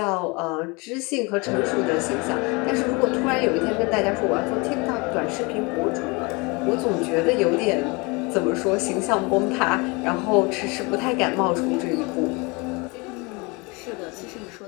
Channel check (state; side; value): quieter; right; 27.7 dB